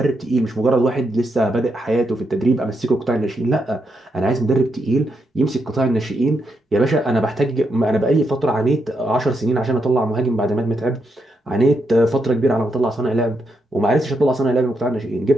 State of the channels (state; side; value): normal; both; correlation 0.81